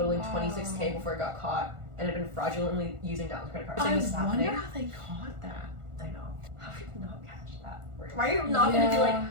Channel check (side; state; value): left; late; 1.4 ms